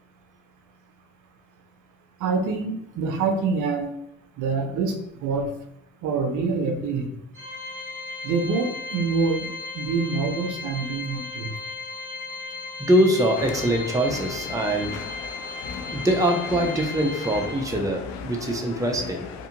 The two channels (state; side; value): normal; both; correlation 0.41